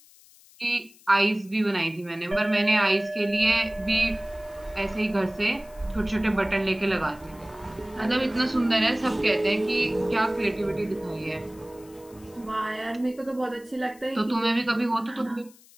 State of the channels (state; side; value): noise; left; hiss, 25 dB below the sound